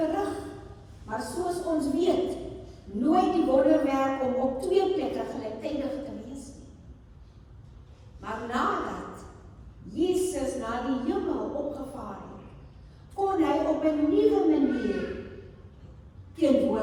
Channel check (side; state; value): both; identical; correlation 1.00